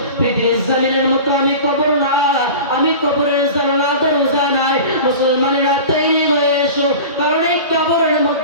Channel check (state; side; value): inverted; both; correlation -0.35